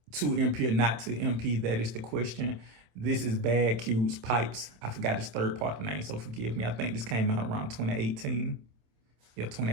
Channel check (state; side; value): late; left; 26 ms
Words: to MP or not to MP. That is the question. This is Bad Q's Pipes. I forgot his third part of the name, so forgive me. I think this came out around 2018. Yeah,